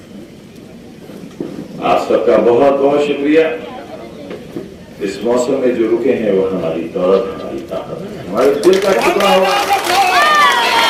आप सबका बहुत बहुत शुक्रिया। इस मौसम में जो रुके हैं वो हमारी दौलत, हमारी ताकत है, हमारे दिल का टुकड़ा हुआ,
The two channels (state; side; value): identical; both; correlation 1.00